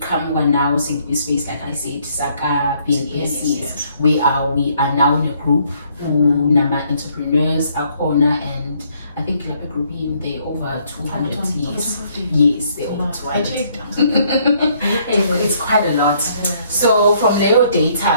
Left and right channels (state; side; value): inverted; both; correlation -0.67